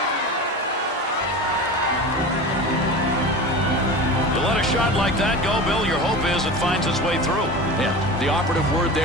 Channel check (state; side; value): normal; both; correlation 0.31